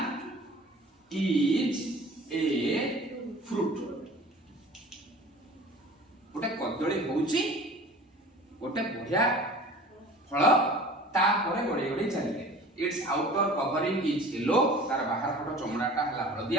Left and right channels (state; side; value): normal; both; correlation 0.43